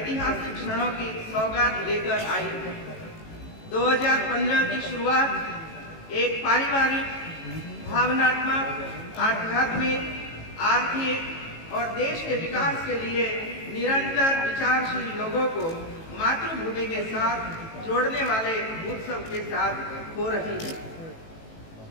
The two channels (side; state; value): right; late; 18 ms